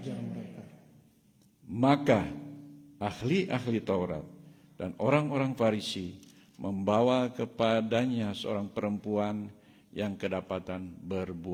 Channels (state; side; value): identical; both; correlation 1.00